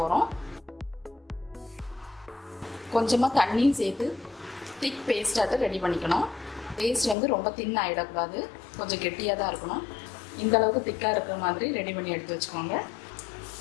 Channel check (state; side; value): drops out; right; at 7.2 s